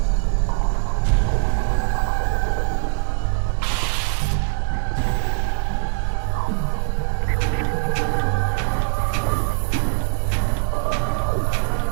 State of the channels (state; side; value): silent; left; digital silence